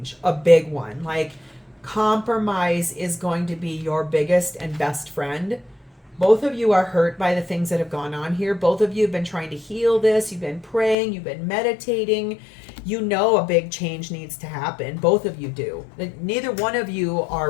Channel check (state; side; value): drops out; right; at 11.0 s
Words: a big one. Like compromise is going to be your biggest and best friend. Both of you are hurt by the things that have gone on here. Both of you have been trying to heal this. You've been praying. You've been meditating. You know a big change needs to happen. Both of you do. Neither one of you are